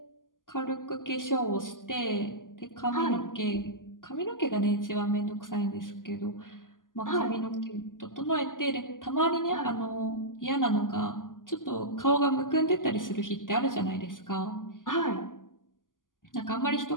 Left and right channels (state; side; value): late; right; 0.89 ms